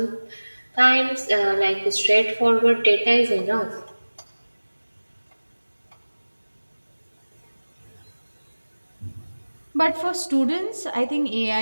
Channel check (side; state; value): both; inverted; correlation -1.00